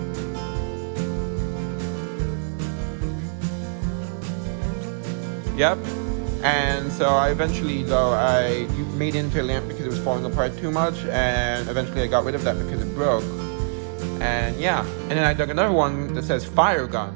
Yep. And so I eventually, though, I made it into a lamp because it was falling apart too much, and eventually I got rid of that because it broke. And yeah, and then I dug another one that says fire gun.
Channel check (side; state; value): left; silent; digital silence